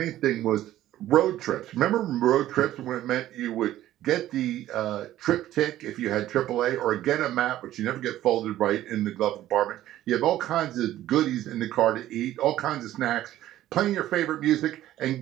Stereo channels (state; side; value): quieter; left; 13.7 dB